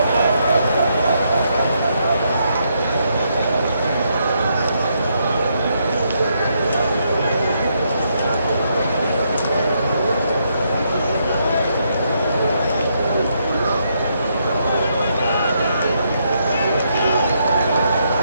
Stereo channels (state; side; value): inverted; both; correlation -0.77